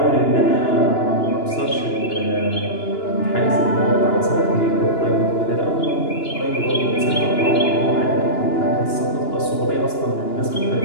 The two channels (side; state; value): right; late; 2.9 ms